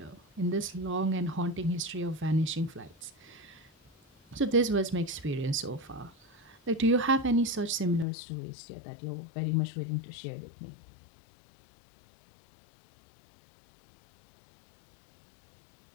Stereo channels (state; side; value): drops out; right; at 8.1 s